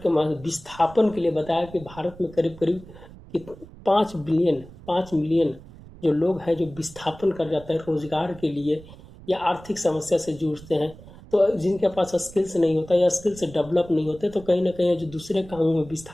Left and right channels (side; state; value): right; noise; rumble, 19 dB below the sound